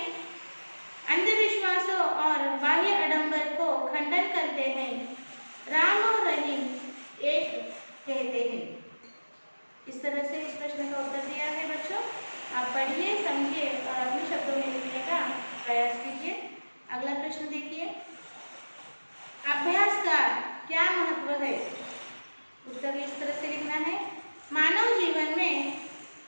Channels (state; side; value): inverted; both; correlation -1.00